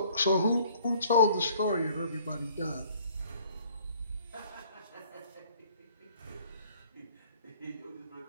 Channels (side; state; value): both; inverted; correlation -0.57